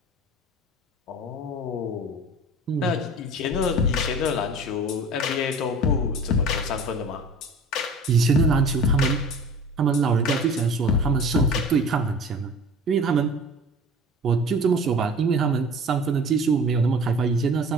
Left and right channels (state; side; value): normal; both; correlation 0.40